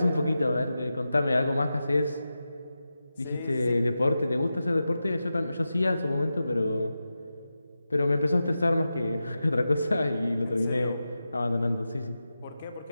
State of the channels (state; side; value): inverted; both; correlation -0.92